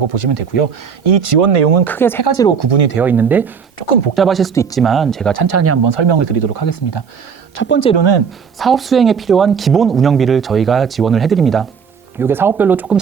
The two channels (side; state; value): left; quieter; 6.5 dB